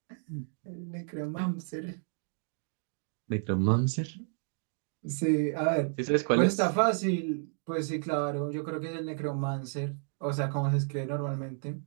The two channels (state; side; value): silent; left; 57 dB below the other